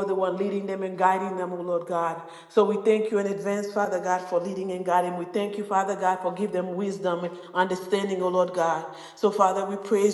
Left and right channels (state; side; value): identical; both; correlation 1.00